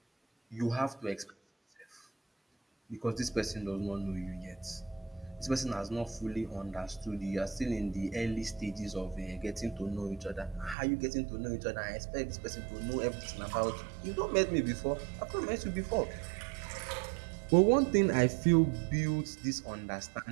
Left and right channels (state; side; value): drops out; left; at 10.8 s